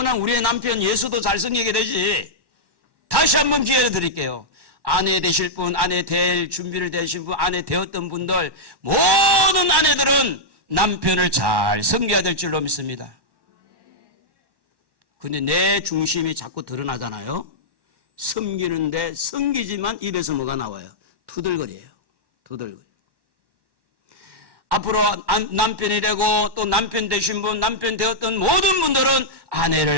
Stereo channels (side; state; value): left; late; 1.1 ms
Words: 우리의 남편 예수도 잘 섬기게 되지. 다시 한번 기회를 드릴게요. 아내 되실 분, 아내 될 준비를 되신 분, 아내 되었던 분들, 모든 아내들은 남편을 잘 섬겨야 될 줄로 믿습니다. 근데 내 중심이 자꾸 드러나잖아요. 섬기는데 섬기지만 입에서 뭐가 나와요? 투덜거려요. 투덜거려. 앞으로 남편이 되고 또 남편 되신 분, 남편 되었던 모든 분들은